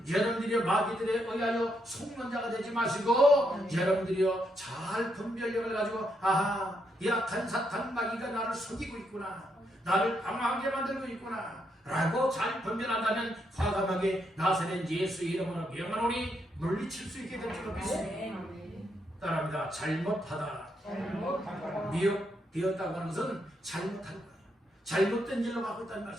여러분들이 마귀들에 의하여 속는 자가 되지 마시고 여러분들이요 잘 분별력을 가지고 아하 약한 사탄 마귀가 나를 속이고 있구나, 나를 방황하게 만들고 있구나 라고 잘 분별한다면 과감하게 나사렛 예수 이름으로 명하노니 물리칠 수 있게 될 줄 믿습니다. 따라합니다. 잘못하다 미혹되었다고 하는 것은 잘못한 거예요. 잘못된 일로 가고 있다는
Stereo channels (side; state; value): both; normal; correlation 0.78